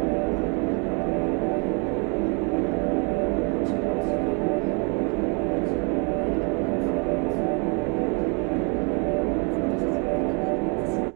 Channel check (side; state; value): left; quieter; 34.4 dB